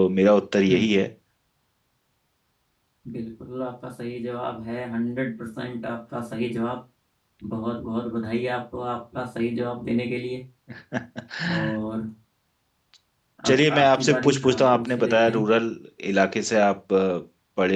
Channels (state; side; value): identical; both; correlation 1.00